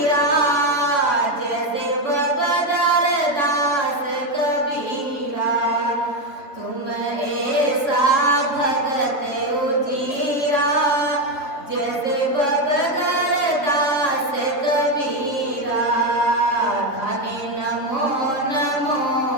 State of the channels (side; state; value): right; late; 3.9 ms